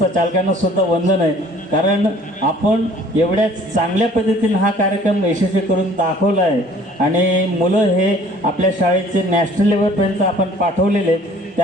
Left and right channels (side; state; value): both; normal; correlation 0.53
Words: चालकांना सुद्धा वंदन आहे. कारण आपण एवढ्या चांगल्या पद्धतीने हा कार्यक्रम यशस्वी करून दाखवला आहे आणि मुलं हे आपल्या शाळेचे नॅशनल लेवलपर्यंत आपण पाठवलेले आहेत.